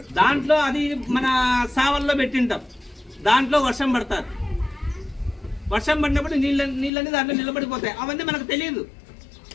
దాంట్లో అది మన సావల్లో పెట్టింటాం, దాంట్లో వర్షం పడతారు. వర్షం పడినప్పుడు నీళ్ళని దాంట్లో నిలబడిపోతాయి. అవన్నీ మనకు తెలియదు,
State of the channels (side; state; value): right; drops out; at 6.9 s